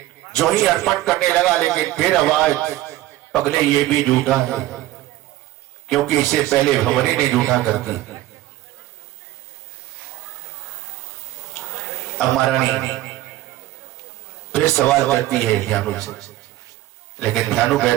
जो ही अर्पण करने लगा, लेकिन फिर आवाज, पगले ये भी झूठा है, क्योंकि इसे पहले भंवरी ने झूठा कर दी। अब महारानी फिर सवाल करती है ध्यानु से, लेकिन ध्यानु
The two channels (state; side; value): quieter; left; 15.4 dB